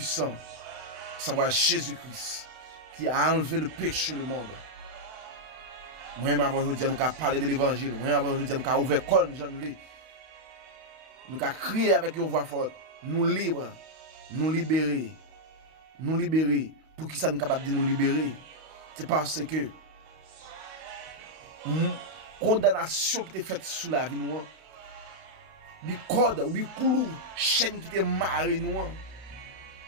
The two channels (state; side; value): late; left; 32 ms